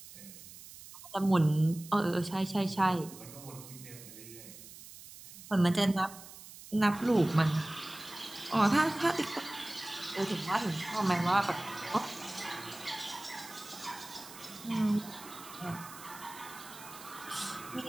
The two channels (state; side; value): noise; right; hiss, 16 dB below the sound